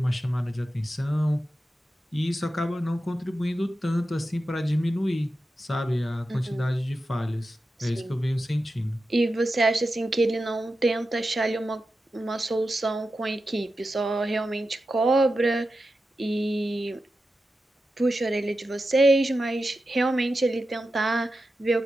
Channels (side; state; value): both; normal; correlation 0.91